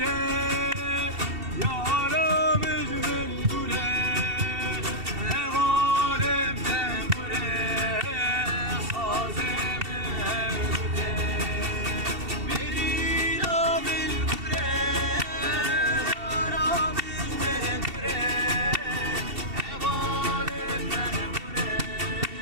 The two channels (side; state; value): left; late; 2.7 ms